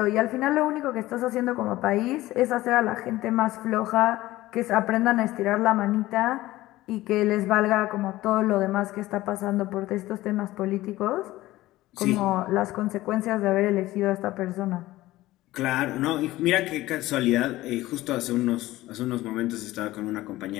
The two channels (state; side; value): quieter; right; 17.0 dB